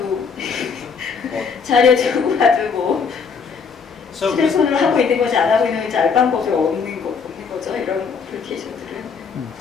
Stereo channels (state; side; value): quieter; right; 5.7 dB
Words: 자료 두고 가도 뭐 so 휴대폰을 하고 있는 건지 안 하고 있는 건지 알 방법이 없는 거죠. 이런 어플리케이션들은.